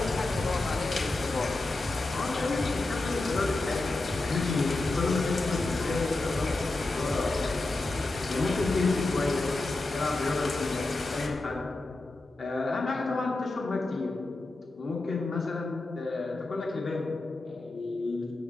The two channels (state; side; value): quieter; right; 3.0 dB